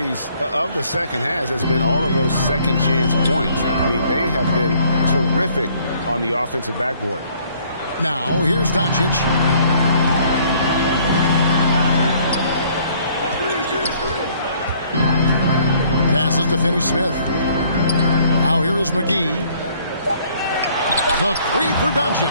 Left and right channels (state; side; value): inverted; both; correlation -0.61